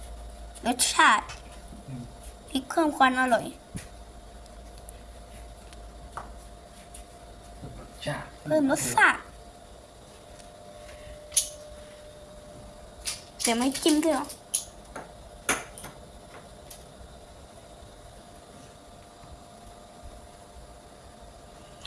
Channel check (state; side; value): identical; both; correlation 1.00